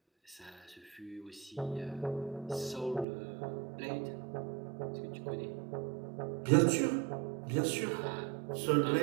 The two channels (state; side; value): drops out; left; at 3.1 s